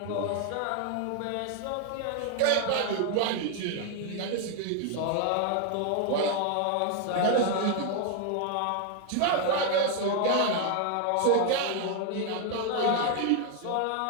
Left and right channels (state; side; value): different; both; correlation 0.01